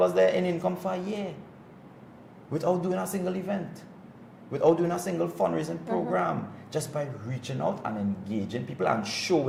there in income for a year, without doing a single event, without doing a single fundraising program, just by reaching out and engaging people and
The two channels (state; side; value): identical; both; correlation 1.00